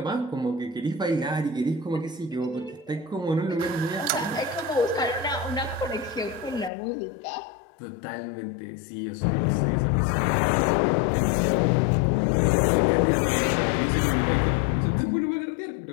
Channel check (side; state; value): right; drops out; at 6.7 s